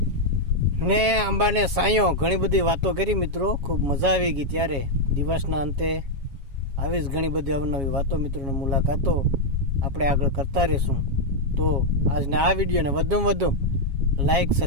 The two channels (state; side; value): late; left; 7.3 ms